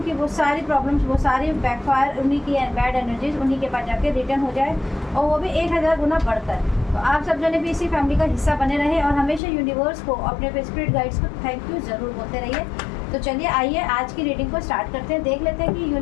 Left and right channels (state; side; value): drops out; right; at 9.4 s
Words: कि वो सारी प्रॉब्लम्स, वो सारी बैकफायर, उन्हीं की बैड एनर्जीज उन्हीं के पास जाके रिटर्न हो जाए और वो भी 1000 गुना बढ़कर। तो आप सब जने भी इसी फैमिली का हिस्सा बने रहे और हमेशा यूनिवर्स को, अपने स्पिरिट गाइड्स को थैंक यू ज़रूर बोलते रहिए। तो चलिए आइए आज की रीडिंग को स्टार्ट करते हैं। देख लेते हैं कि